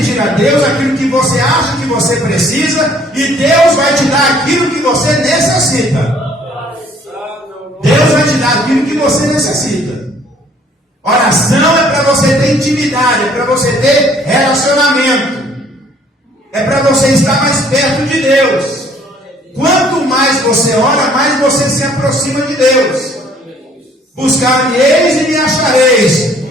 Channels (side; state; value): both; normal; correlation 0.59